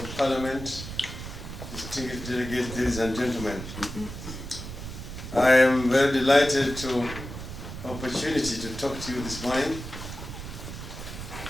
Parliament, distinguished delegates, ladies and gentlemen. I am very delighted to opportunity to talk to you this morning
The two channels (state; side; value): noise; right; rumble, 9 dB below the sound